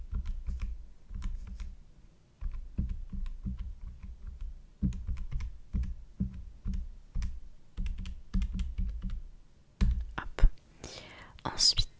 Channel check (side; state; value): both; identical; correlation 1.00